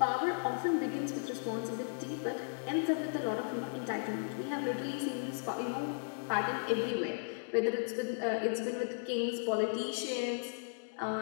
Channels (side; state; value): right; silent; digital silence